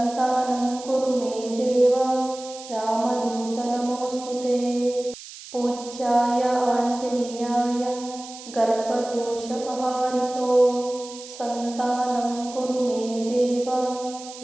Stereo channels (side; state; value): right; noise; hiss, 15 dB below the sound